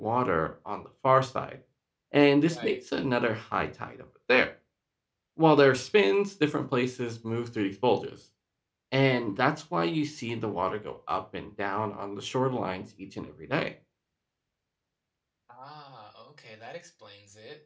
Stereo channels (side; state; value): both; identical; correlation 1.00